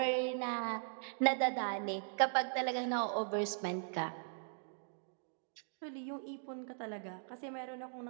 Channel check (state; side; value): silent; left; digital silence